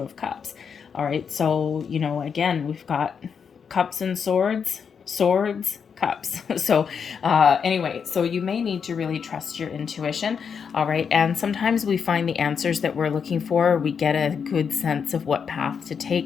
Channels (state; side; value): quieter; right; 6.6 dB